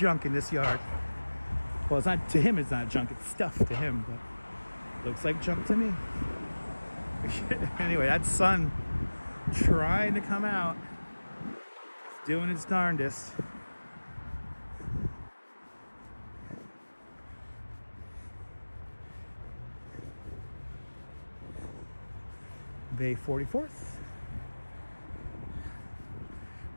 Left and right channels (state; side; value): inverted; both; correlation -1.00